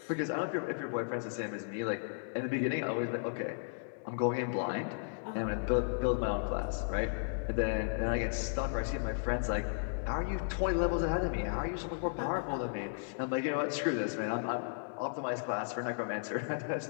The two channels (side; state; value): right; silent; digital silence